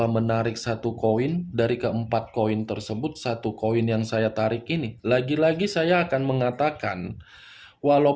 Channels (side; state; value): both; identical; correlation 1.00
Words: menarik satu koin dari keempat koin tersebut, satu koin yang saya tarik ini, lagi-lagi saya akan mengatakan,